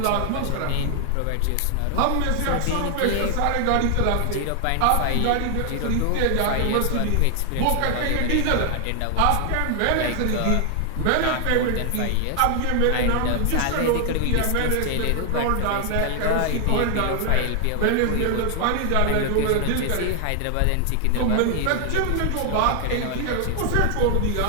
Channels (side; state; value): both; different; correlation 0.00